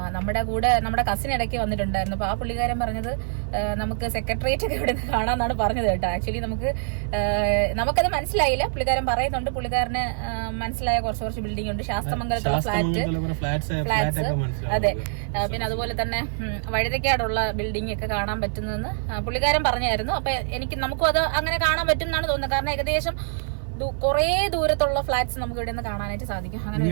നമ്മുടെ കസിൻ ഇടയ്ക്ക് വന്നിട്ടുണ്ടായിരുന്നു. അപ്പൊ ആ പുള്ളിക്കാരൻ പറഞ്ഞത് നമുക്ക് സെക്രട്ടേറിയറ്റ് ഒക്കെ ഇവിടെ കാണാന്നാണ് പറഞ്ഞത് കേട്ടോ. ആക്ച്വലി നമുക്കത് മനസ്സിലായില്ല. പുള്ളിക്കാരൻ പറയുന്നുണ്ട്, പുള്ളിക്കാരന് മനസ്സിലായ കുറച്ച് ബിൽഡിംഗ് ഉണ്ട്. ശാസ്ത്രമംഗലത്തുള്ള ഫ്ലാറ്റ്സ്, അതെ. പിന്നെ അതുപോലെ തന്നെ വഴുതക്കാടുള്ള ബിൽഡിംഗ് ഒക്കെ കാണാൻ പറ്റുന്നതെന്ന് പുള്ളിക്കാരൻ പറഞ്ഞായിരുന്നു. അപ്പൊ നമുക്കും അത് അങ്ങനെ കാണാൻ പറ്റും എന്നാണ് തോന്നുന്നത്. കാരണം ഏകദേശം കുറേ ദൂരത്തുള്ള ഫ്ലാറ്റ്സ് നമുക്ക് ഇവിടെ നിന്ന് കാണാനായിട്ട് സാധിക്കും.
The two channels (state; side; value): silent; left; digital silence